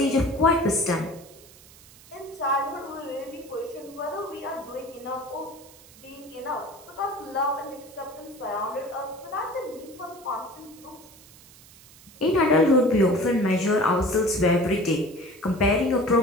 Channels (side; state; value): right; noise; hiss, 23 dB below the sound